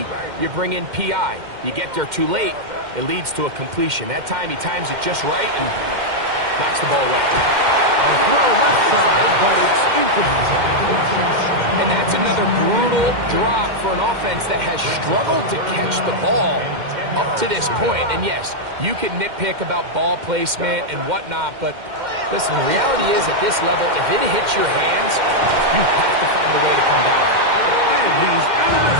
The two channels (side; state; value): left; late; 2.1 ms